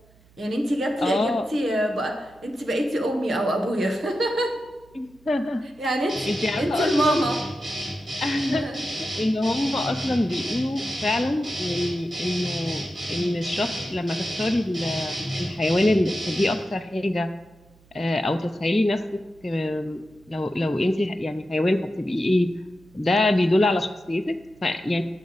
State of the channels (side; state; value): right; noise; hum, 29 dB below the sound